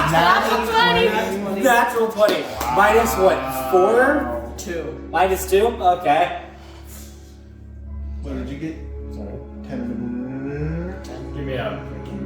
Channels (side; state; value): both; identical; correlation 1.00